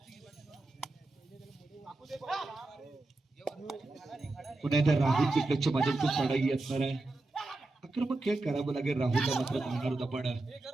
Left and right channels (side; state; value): left; quieter; 3.0 dB